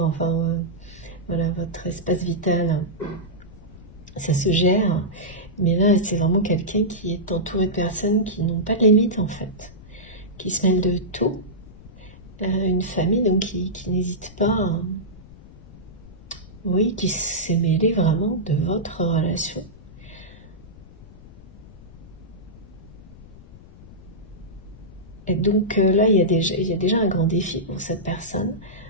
enfin voilà, votre espace vital, ça se gère. Mais là, c'est vraiment quelqu'un qui est entouré de personnes qui n'ont pas de limite en fait, qui se mêlent de tout. Une famille donc qui n'hésite pas, oui, qui s'est mêlée vraiment de votre relation. Et donc là, il y a déjà un grand défi pour cette personne.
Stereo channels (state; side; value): noise; left; rumble, 19 dB below the sound